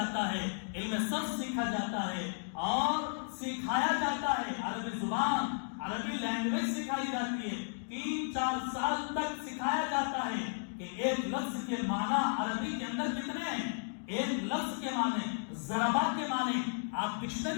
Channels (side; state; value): right; silent; digital silence